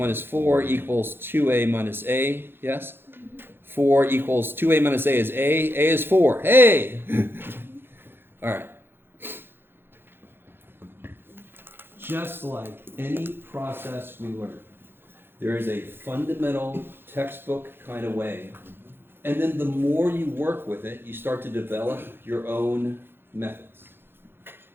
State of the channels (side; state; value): left; late; 0.10 ms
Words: 4 equals 2a minus a, yes? 4 equals 2a minus a is a is 4. Hey! All right. Just like any process we learn, there is a fundamental textbook kind of way. And then the more you work with it, you start to develop your own methods.